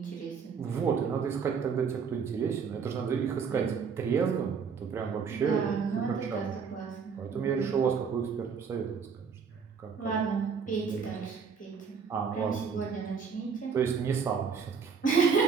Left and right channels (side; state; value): left; quieter; 6.0 dB